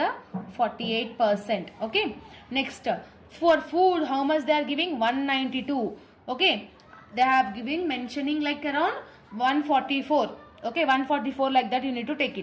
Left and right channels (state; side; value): identical; both; correlation 1.00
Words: 48%. Okay. Next, for food, how much they are giving? 192. Okay. They have given mentioning like around 144. Okay. 144 like that you need to take